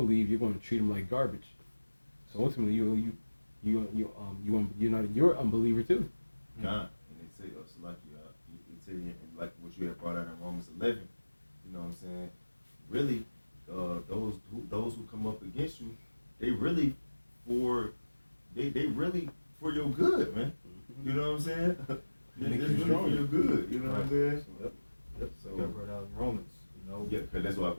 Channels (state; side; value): inverted; both; correlation -1.00